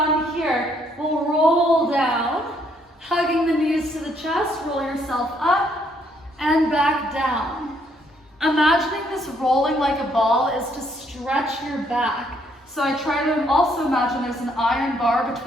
here, we'll roll down, hugging the knees to the chest, roll yourself up and back down. Imagining this rolling like a ball is to stretch your back. So I try to also imagine there's an iron bar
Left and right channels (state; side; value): normal; both; correlation 0.69